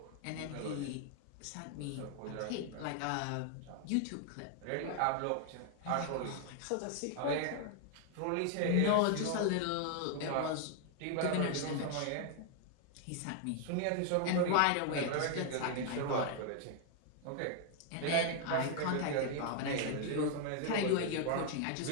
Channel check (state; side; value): different; both; correlation 0.00